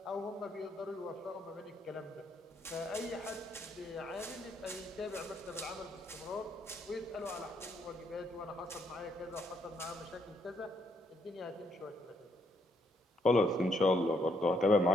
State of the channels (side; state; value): both; normal; correlation 0.73